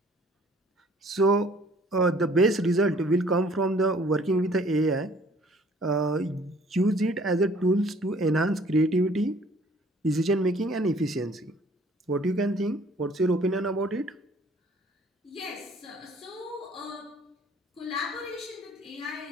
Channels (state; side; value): normal; both; correlation 0.56